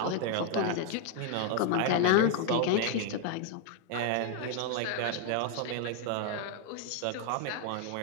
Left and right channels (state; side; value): different; both; correlation 0.00